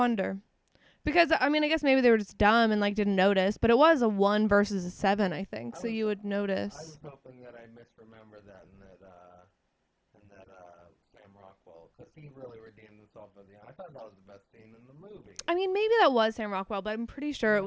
Because, I mean, I guess maybe they were just dumb and, like, didn't notice. But it was a 1 versus a 7, I think. So you would notice. I was hoping that I misremember that and that and that Sam Rockwell, because he really redeemed himself at the end. I thought that was the best scene in the movie. I mean, maybe that was Sam Rockwell, but I'm pretty sure it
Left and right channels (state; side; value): identical; both; correlation 1.00